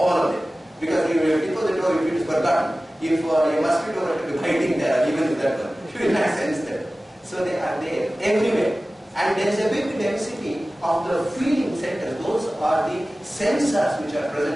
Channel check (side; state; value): both; normal; correlation 0.97